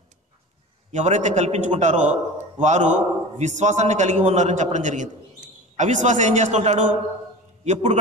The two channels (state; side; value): normal; both; correlation 0.34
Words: ఎవరైతే కల్పించుకుంటారో వారు విశ్వాసాన్ని కలిగి ఉన్నారని చెప్పడం జరిగింది. అవిశ్వాసం ఏం చేస్తుంటాడు? ఎప్పుడు